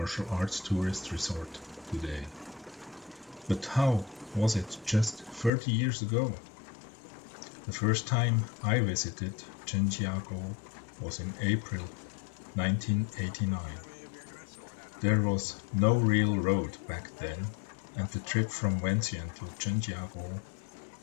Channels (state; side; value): drops out; right; at 5.5 s